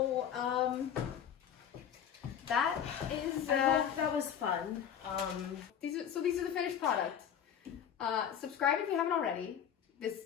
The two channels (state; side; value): quieter; right; 8.7 dB